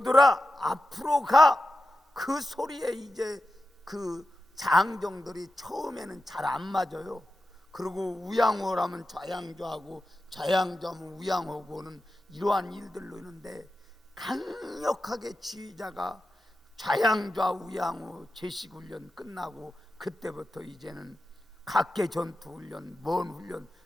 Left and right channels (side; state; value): both; normal; correlation 0.92